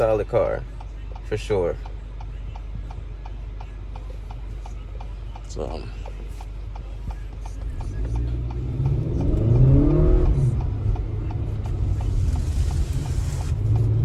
car for sure. So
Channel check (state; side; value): identical; both; correlation 1.00